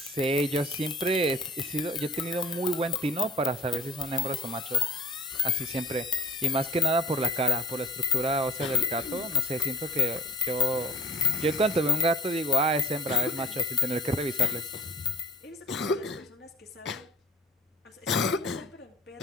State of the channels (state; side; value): normal; both; correlation 0.53